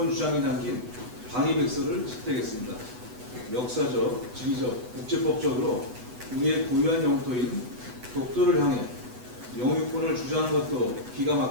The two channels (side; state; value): left; late; 8.1 ms